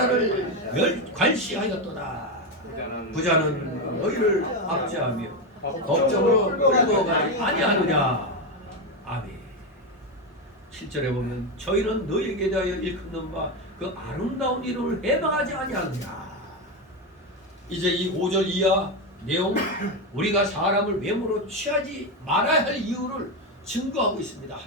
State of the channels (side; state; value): both; normal; correlation 0.11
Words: 관시하였도다. 부자는 너희를 압제하며 법정으로 끌고 가지 아니하느냐. 아멘. 7절에 보면 저희는 너희에게 대하여 일컫는 바 그 아름다운 이름을 해방하지 아니하느냐. 이제 이 5절 이하 내용 우리가 사람을 외모로 취하지 말아야 할 이유를 증거하고 있습니다.